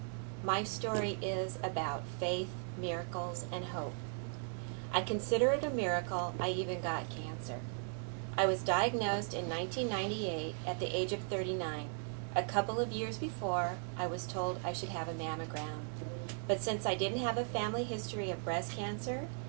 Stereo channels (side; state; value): left; silent; 53 dB below the other